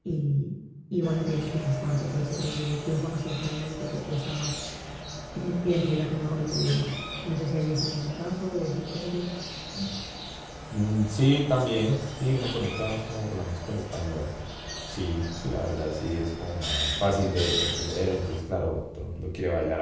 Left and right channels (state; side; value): identical; both; correlation 1.00